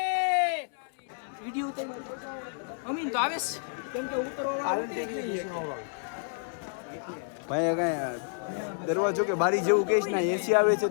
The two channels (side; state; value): right; silent; digital silence